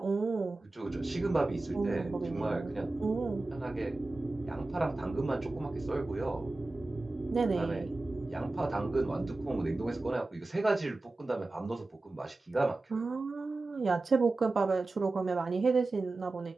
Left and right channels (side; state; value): left; quieter; 3.1 dB